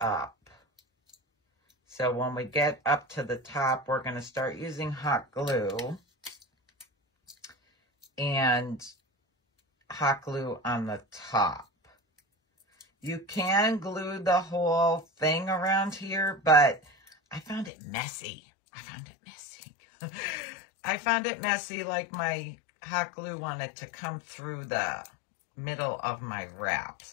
So when we get up to the top, we're going to start using hot glue and hot glue on the top. You can glue the whole thing around here, but I found it messy. I found it messy, like my hot glue wanted to come through the middle of my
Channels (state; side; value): drops out; right; at 17.7 s